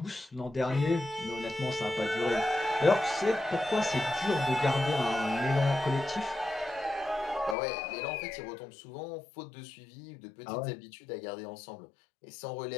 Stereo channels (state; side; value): drops out; right; at 7.6 s